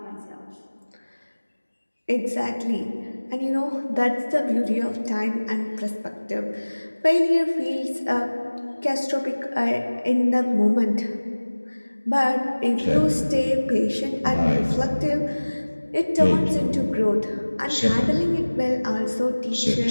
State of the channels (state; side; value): inverted; both; correlation -1.00